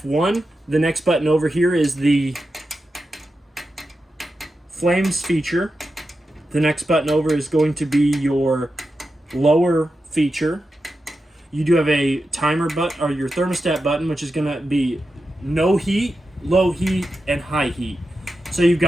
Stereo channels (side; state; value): both; normal; correlation 0.90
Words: The next button over here is the flames feature. The next button over is going to be your lower feature. You do have a timer button, or your thermostat button, which is going to be no heat, low heat, and high heat. So you've